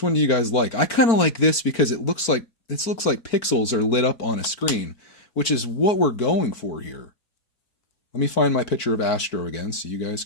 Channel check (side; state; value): right; late; 4.5 ms